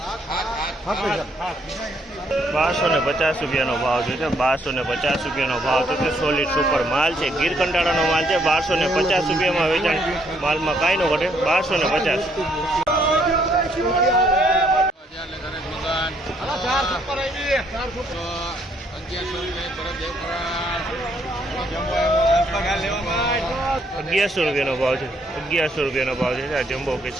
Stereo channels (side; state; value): both; normal; correlation 0.69